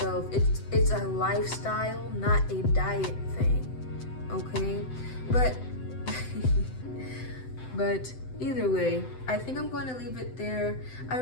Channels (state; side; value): late; right; 7.8 ms